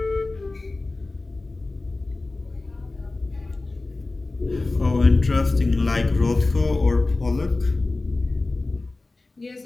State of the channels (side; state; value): right; quieter; 3.2 dB